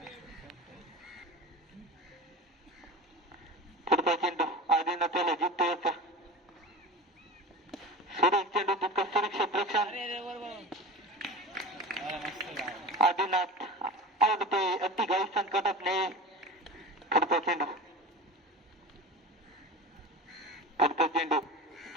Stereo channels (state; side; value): normal; both; correlation 0.32